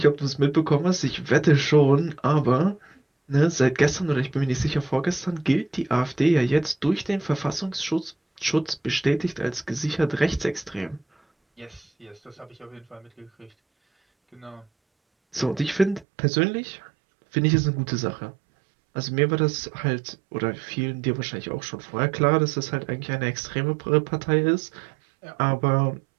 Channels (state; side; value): drops out; left; at 16.1 s